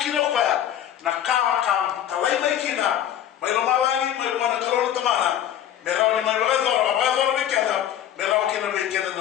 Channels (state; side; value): quieter; right; 10.7 dB